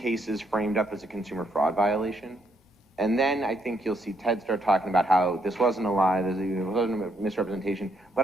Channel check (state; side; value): normal; both; correlation 0.74